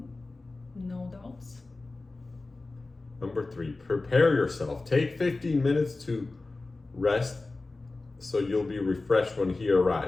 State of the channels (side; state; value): right; quieter; 3.4 dB